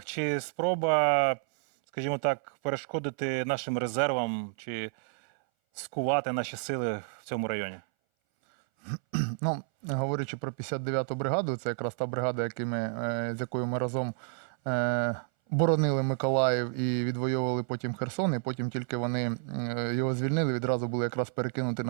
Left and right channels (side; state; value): left; silent; 58 dB below the other